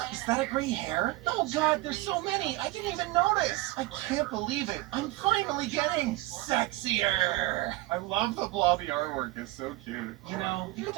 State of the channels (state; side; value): quieter; left; 18.9 dB